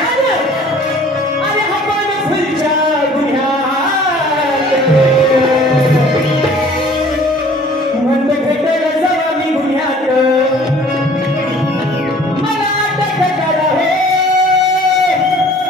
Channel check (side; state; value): both; normal; correlation 0.52